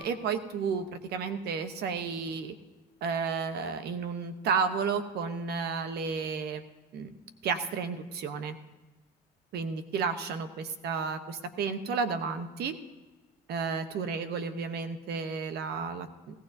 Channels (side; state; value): left; quieter; 5.1 dB